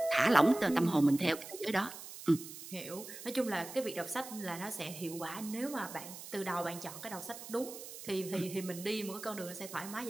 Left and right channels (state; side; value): noise; right; hiss, 12 dB below the sound